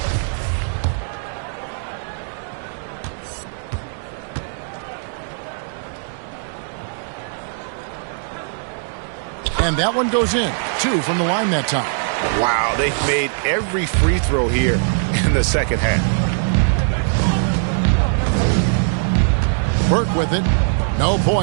And that one goes in. 2 from the line that time. Wow, they've made every free throw here in the second half. Burke with it. No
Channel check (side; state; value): left; silent; digital silence